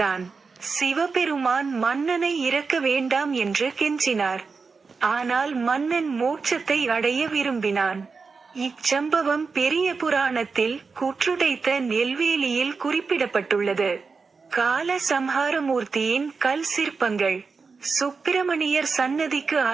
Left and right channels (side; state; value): left; quieter; 4.8 dB